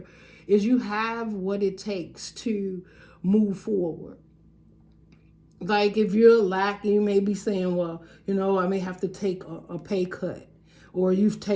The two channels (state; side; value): identical; both; correlation 1.00